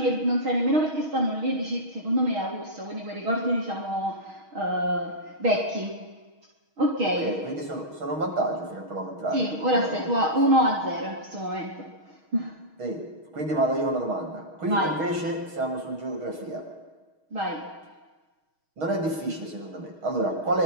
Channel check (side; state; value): left; late; 6.4 ms